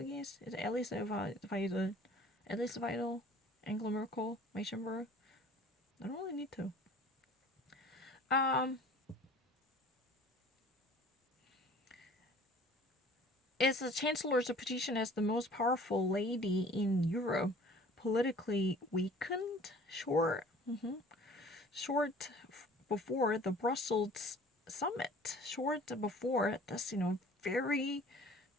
Is Alice Vital, Angela Merkel, Weissenberg? I don't really need to. Is the Chancellor's position as the most powerful lady in Europe politically weakened? Short before the Brussels summit. Short before this, very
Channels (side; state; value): both; normal; correlation 0.48